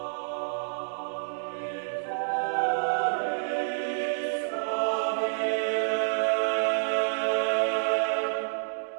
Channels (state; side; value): silent; left; digital silence